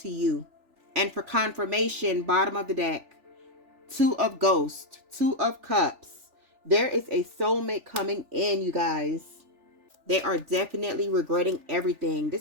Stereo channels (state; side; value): late; left; 3.4 ms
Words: you. And for confirmation, bottom of the deck, Two of Ghosts, Two of Cups. There is a soulmate coming in, you guys. They are definitely regretting everything.